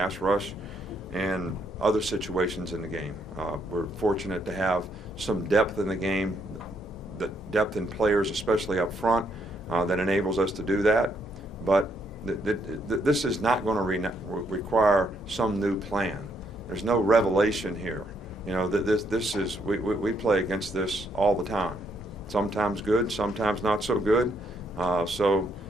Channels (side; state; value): both; normal; correlation 0.73